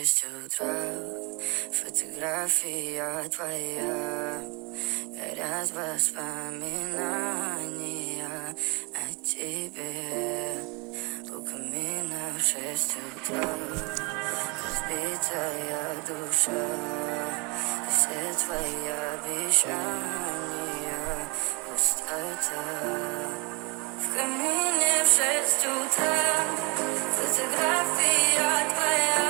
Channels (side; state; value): left; quieter; 30.1 dB